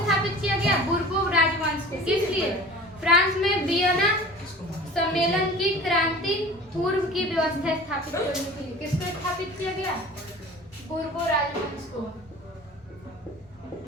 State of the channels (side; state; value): both; normal; correlation 0.40